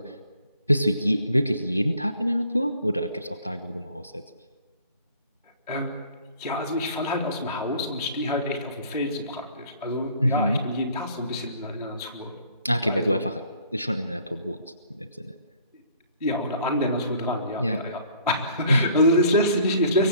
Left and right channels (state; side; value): inverted; both; correlation -0.56